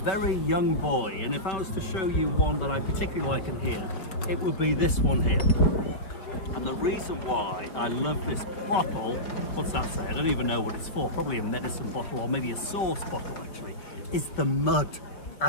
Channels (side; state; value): right; late; 5.1 ms